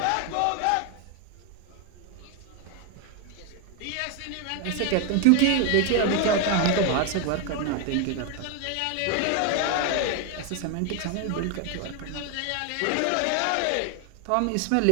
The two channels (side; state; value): both; different; correlation 0.01